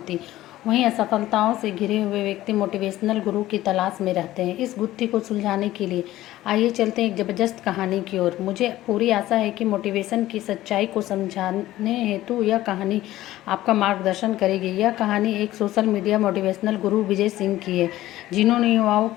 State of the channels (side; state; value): right; quieter; 15.3 dB